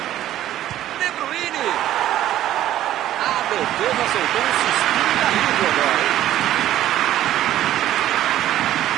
De Bruyne. A defesa soltou um suspiro de alívio agora, hein?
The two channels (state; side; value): quieter; left; 12.9 dB